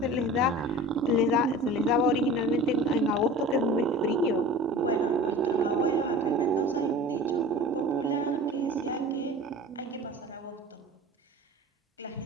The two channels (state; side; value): normal; both; correlation 0.39